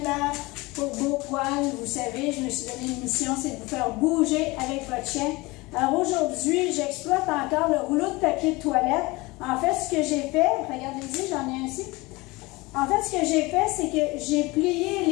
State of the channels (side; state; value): right; quieter; 22.8 dB